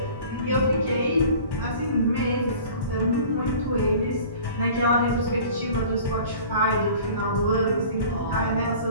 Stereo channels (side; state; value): both; inverted; correlation -0.45